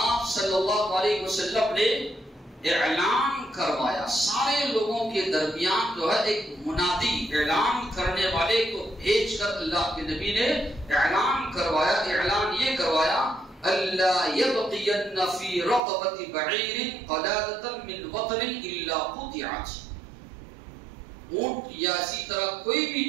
صلی اللہ علیہ وسلم نے اعلان کروایا، سارے لوگوں کے درمیان جو ہے ایک منادی اعلان کرنے والے کو بھیج کر اللہ کے نبی نے اعلان کروایا، اعلان یہ کروایا اللہ یبقین فی رقبۃ بعیر قلادۃ من وطن الا قطعت، اونٹ یا اسی طرح کوئی بھی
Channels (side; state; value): left; drops out; at 15.8 s